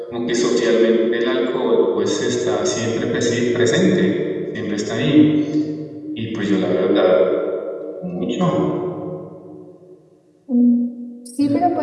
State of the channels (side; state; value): both; identical; correlation 1.00